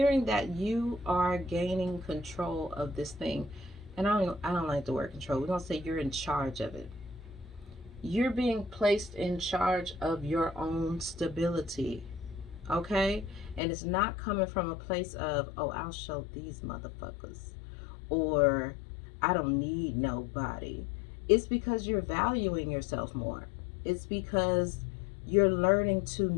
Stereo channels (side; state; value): right; drops out; at 13.6 s